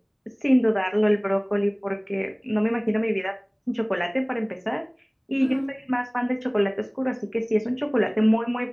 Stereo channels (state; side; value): identical; both; correlation 1.00